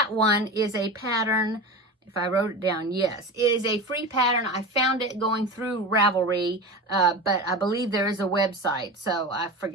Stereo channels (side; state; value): both; normal; correlation 0.28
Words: one is a pattern. If I wrote it down, yes, it is a free pattern. I found it going through Ravelry, but I believe there is a website, so I